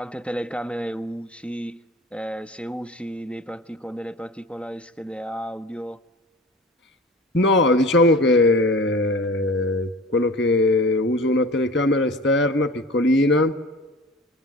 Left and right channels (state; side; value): normal; both; correlation 0.39